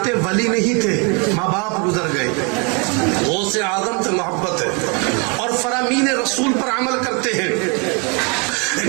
ولی نہیں تھے، ماں باپ گزر گئے، غوث اعظم سے محبت ہے اور فرامین رسول پر عمل کرتے ہیں۔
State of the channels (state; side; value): quieter; left; 33.1 dB